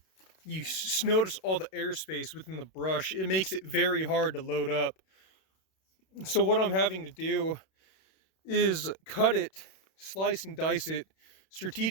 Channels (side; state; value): right; late; 32 ms